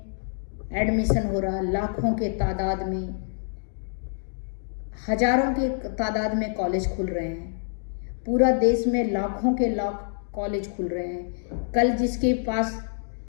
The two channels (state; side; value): silent; right; digital silence